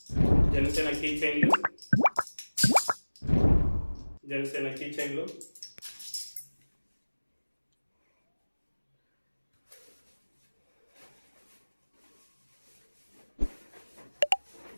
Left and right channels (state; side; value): inverted; both; correlation -1.00